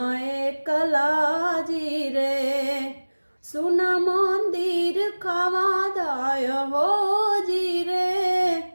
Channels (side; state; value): both; inverted; correlation -1.00